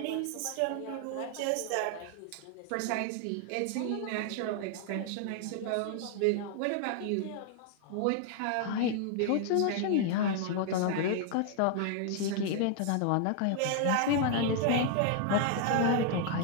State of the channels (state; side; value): different; both; correlation 0.00